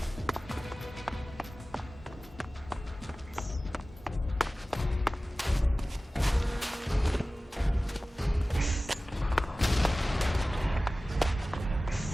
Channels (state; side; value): normal; both; correlation 0.97